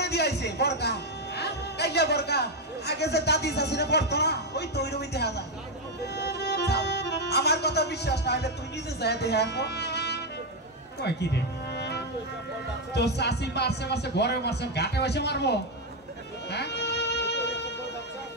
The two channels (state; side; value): normal; both; correlation 0.04